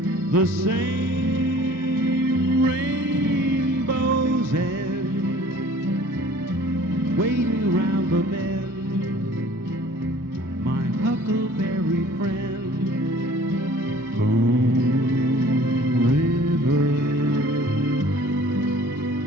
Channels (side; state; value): both; normal; correlation 0.51